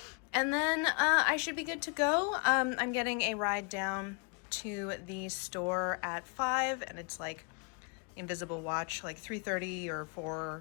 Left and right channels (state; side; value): quieter; right; 36.6 dB